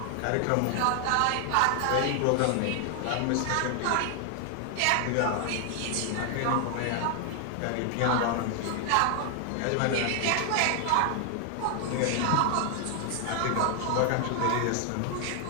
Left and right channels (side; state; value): both; different; correlation 0.00